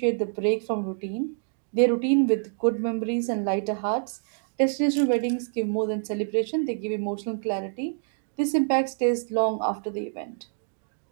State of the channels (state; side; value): silent; left; digital silence